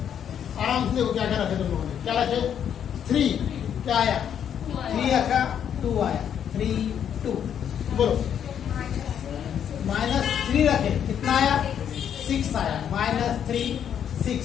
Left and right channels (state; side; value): quieter; right; 8.9 dB